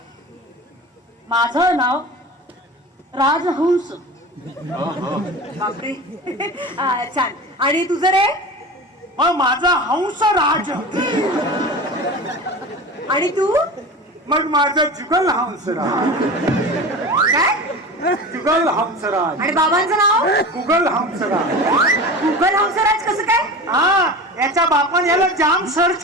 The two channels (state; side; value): normal; both; correlation 0.32